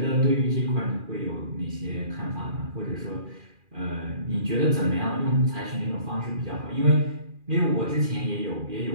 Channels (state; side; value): late; left; 2.4 ms